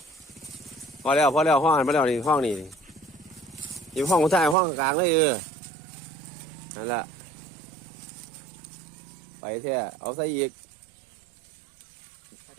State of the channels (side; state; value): left; drops out; at 4.5 s